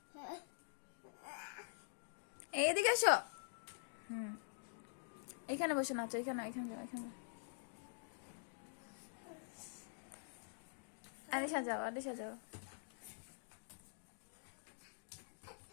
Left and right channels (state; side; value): silent; right; digital silence